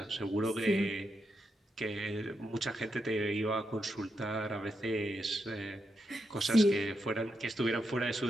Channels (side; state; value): both; normal; correlation 0.84